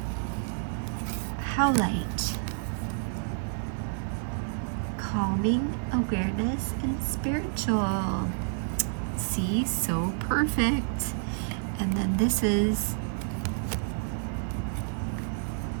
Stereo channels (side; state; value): left; silent; digital silence